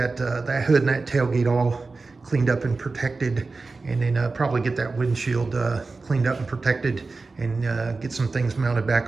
hood and that tailgate all cleaned up and protected. And then probably get that windshield cleaned up and protected, and get some things mounted back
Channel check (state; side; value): quieter; left; 3.8 dB